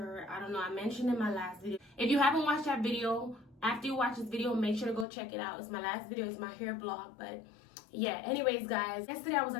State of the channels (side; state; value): right; drops out; at 5.1 s